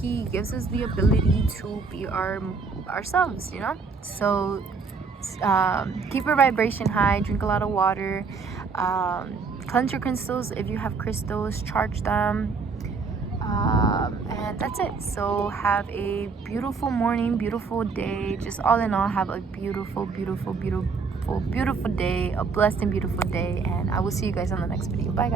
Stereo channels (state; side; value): quieter; left; 4.8 dB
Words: he gives us the ability to be ourselves, you know. So keep your vibration high, drink a lot of water, cleanse your crystals. If you have crystals, charge them, and that's it. So have a beautiful morning, beautiful day. Just all in all, have a beautiful day, a blessed and beautiful day, and I will see you guys on the next video. Bye